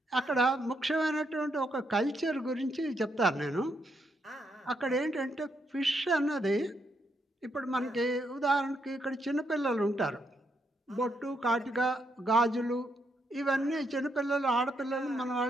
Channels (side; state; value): both; normal; correlation 0.78